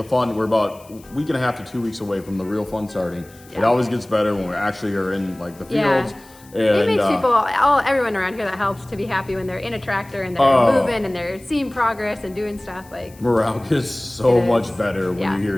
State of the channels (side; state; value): left; noise; hiss, 25 dB below the sound